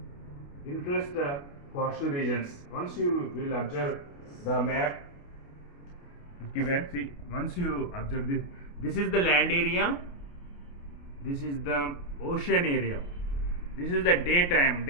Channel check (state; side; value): late; right; 28 ms